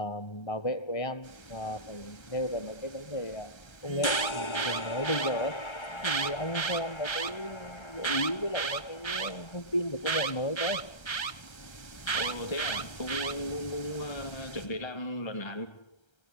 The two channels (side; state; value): right; late; 1.3 ms